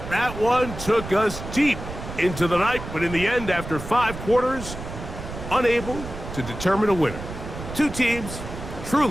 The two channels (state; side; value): noise; right; rumble, 10 dB below the sound